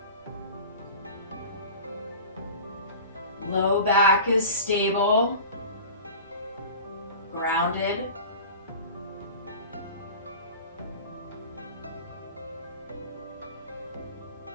Low back is stable, grounded.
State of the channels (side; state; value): both; inverted; correlation -0.38